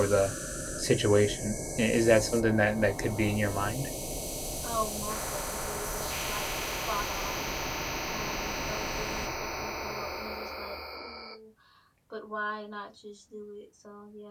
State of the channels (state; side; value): identical; both; correlation 1.00